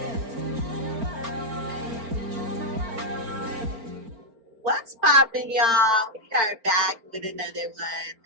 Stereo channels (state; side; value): late; left; 4.4 ms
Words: What's poppin', y'all? We are back with another one.